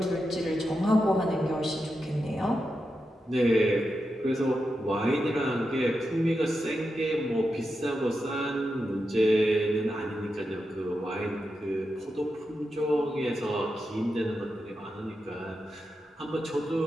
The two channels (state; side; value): normal; both; correlation 0.88